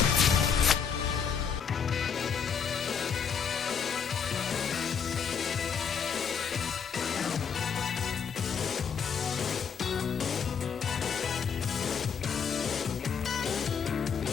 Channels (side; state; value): right; quieter; 6.8 dB